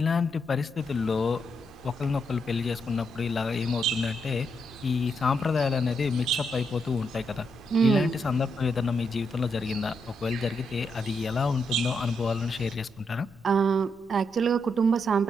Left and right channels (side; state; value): left; noise; rumble, 29 dB below the sound